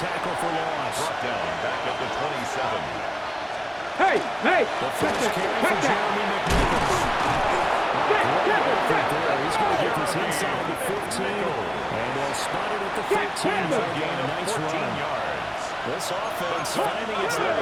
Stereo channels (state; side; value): identical; both; correlation 1.00